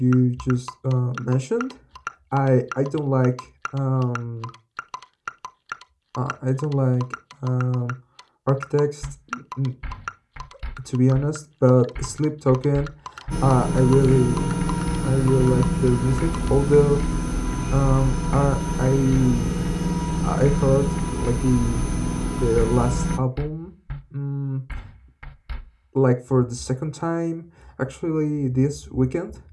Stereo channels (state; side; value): identical; both; correlation 1.00